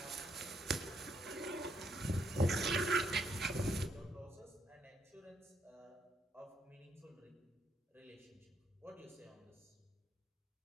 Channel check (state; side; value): normal; both; correlation 0.74